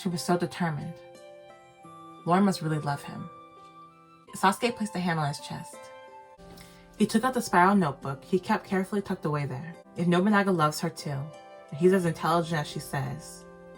She was so determined. Lauren must really love him. Sasuke placed a hand on his chest. He took out the spiral notebook he kept carefully tucked away there. If Nobunaga loves her too, and he's as intelligent as she says,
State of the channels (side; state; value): both; identical; correlation 1.00